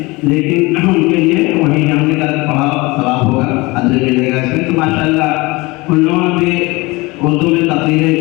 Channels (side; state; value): right; quieter; 23.2 dB